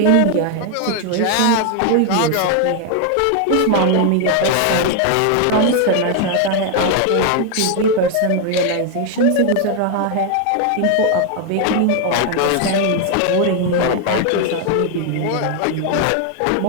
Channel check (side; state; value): both; different; correlation 0.01